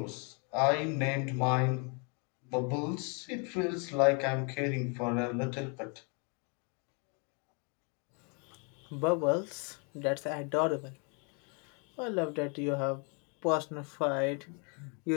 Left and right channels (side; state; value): right; quieter; 36.0 dB